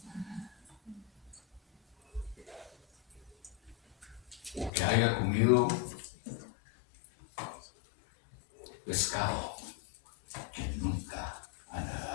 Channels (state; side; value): drops out; right; at 4.7 s